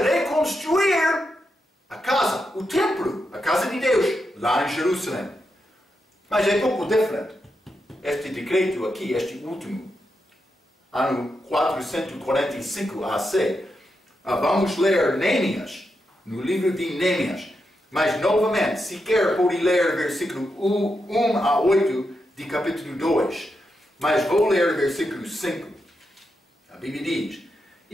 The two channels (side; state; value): both; normal; correlation 0.85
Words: reconstruir a casa, o templo, a casa de Deus, lá em Jerusalém. Mas é pouco diferente. Este decreto aqui, este último, ano 445 AC, vamos ler Neemias, no livro de Neemias. Mas, novamente, se quer, pode ler versículo 1 a 8 de capítulo 2. Mas vou ler versículo 5. A Bíblia diz: